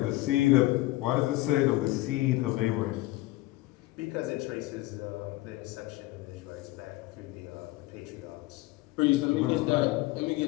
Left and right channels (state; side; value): quieter; right; 18.6 dB